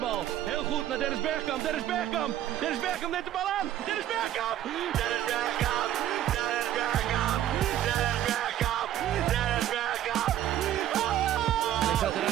Heel goed naar Dennis Bergkamp. Dennis Bergkamp. Dennis Bergkamp neemt de bal aan. Dennis Bergkamp. Dennis Bergkamp. Dennis Bergkamp. Dennis Bergkamp. Dennis Bergkamp.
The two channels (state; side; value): quieter; left; 12.0 dB